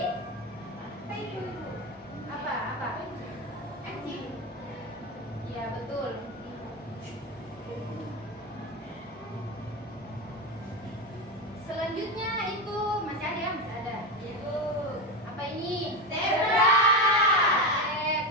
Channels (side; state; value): both; normal; correlation 0.17